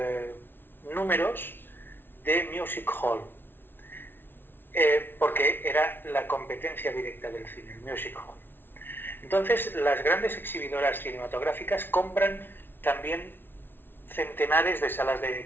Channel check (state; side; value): late; right; 0.10 ms